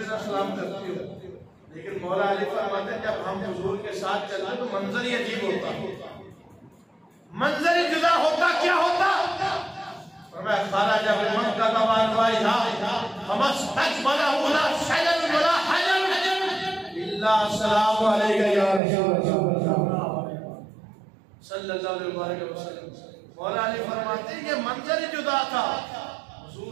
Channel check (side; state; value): left; drops out; at 18.8 s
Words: نہ سلام کرتے ہو لیکن مولا علی فرماتے ہیں جب ہم حضور کے ساتھ چلتے تو منظر ہی عجیب ہوتا منظر جدا ہوتا کیا ہوتا فرمایا خارج ابن مکہ کا وانوائی تھا فمستقبلہ ولا شجر ولا حجر الا السلام علیکہ یا رسول اللہ صلی اللہ علیہ وسلم مولا علی فرماتے ہیں یہ منظر جدا تھا